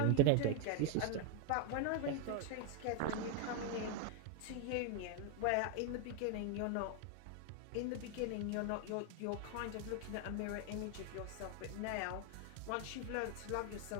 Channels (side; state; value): both; different; correlation 0.01